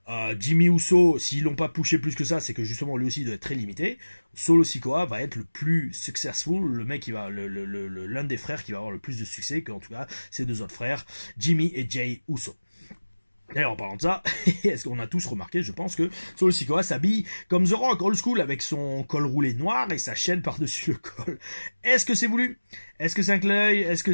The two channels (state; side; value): inverted; both; correlation -1.00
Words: Jimmy Uso, s'ils l'ont pas poussé plus que ça, c'est que justement lui aussi il doit être très limité. Solo Sikoa va être le plus successful, le mec qui va, l'un des frères qui va avoir le plus de succès que en tout cas ses deux autres frères, Jimmy et Jey Uso. D'ailleurs, en parlant de ça, est-ce qu'on a tous remarqué, je pense que Solo Sikoa s'habille comme The Rock, old school, avec son col roulé noir et sa chaîne par-dessus le col. Est-ce que c'est voulu? Est-ce que c'est un clin d'œil? Est-ce que